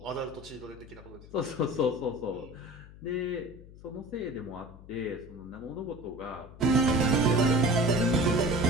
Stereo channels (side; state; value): left; noise; hum, 18 dB below the sound